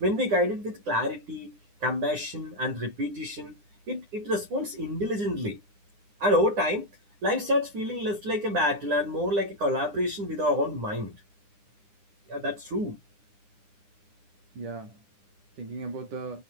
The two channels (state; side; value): late; left; 9.9 ms